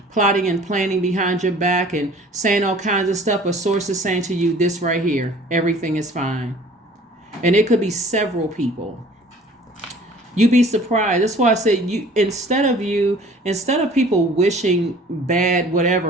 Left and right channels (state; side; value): normal; both; correlation 0.50